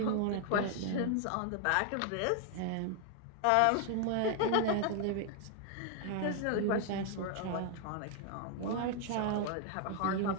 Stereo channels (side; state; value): both; different; correlation 0.00